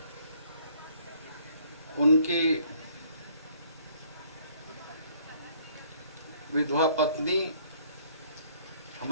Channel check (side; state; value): both; inverted; correlation -0.61